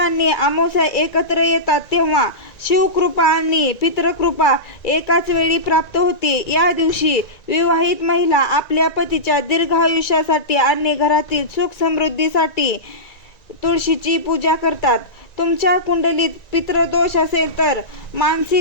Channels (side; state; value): right; late; 1.9 ms